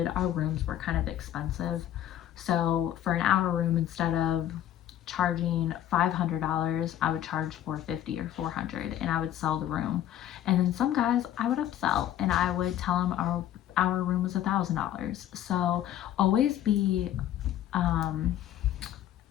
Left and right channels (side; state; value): right; quieter; 11.7 dB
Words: rooms were kind of expensive. So for an hour room, instead of charging $500, I would charge $450 or $400, and I would sell the room. And then some guys I would upsell, and I would tell them our room was $1,000. So always